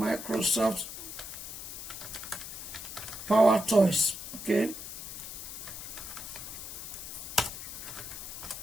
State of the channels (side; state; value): left; noise; hiss, 9 dB below the sound